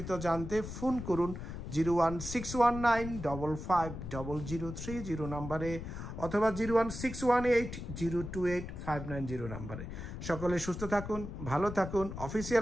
জানতে ফোন করুন 01619550030 নাম্বারে অথবা 01618028590 নাম্বারে। সকলে সুস্থ থাকুন, ভালো থাকুন।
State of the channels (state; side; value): noise; left; rumble, 8 dB below the sound